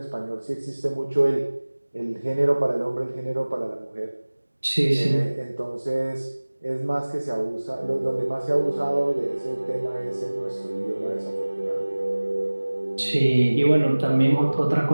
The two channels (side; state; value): both; inverted; correlation -1.00